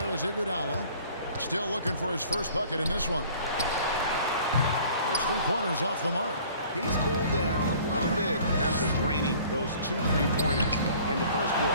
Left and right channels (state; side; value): inverted; both; correlation -0.51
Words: is Iguodala. Still looking for his first bucket in this one. His 3-pointers off the mark. He's cooled down a little bit after draining those 2 3-pointers in the first